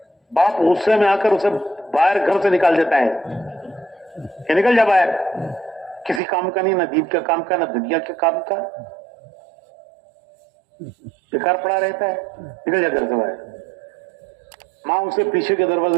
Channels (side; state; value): left; drops out; at 6.2 s